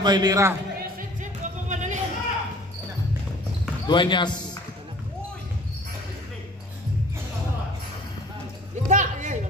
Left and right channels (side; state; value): both; normal; correlation 0.49